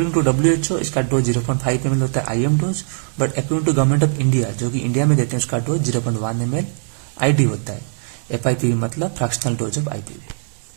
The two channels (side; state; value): left; silent; digital silence